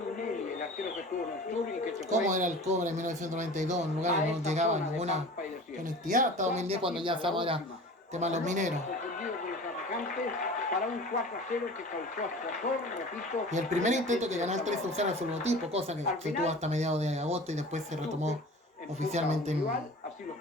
el arquero que estuvo en el sur y que se fue. ¿Cómo era el cobre en 1992? En lugares no llegaba ninguna conectividad. Hasta 2010 cuando ya estamos era tema de los mineros. Para un 4-0 que causó escozor, repito. Y el primer intento que ganó el 3-0 a su logotipo, cosa que se tuvo hasta mediados de agosto y después se retomó oficialmente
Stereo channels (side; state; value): both; normal; correlation 0.39